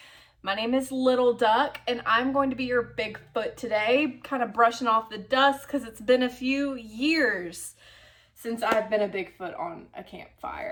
My name is Little Duck and I'm going to be your Bigfoot today, kind of brushing off the dust because it's been a few years since I've been a Bigfoot on a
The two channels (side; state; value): both; identical; correlation 1.00